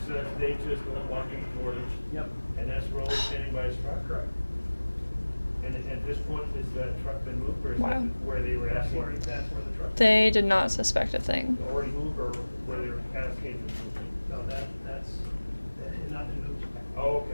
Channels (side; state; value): both; inverted; correlation -1.00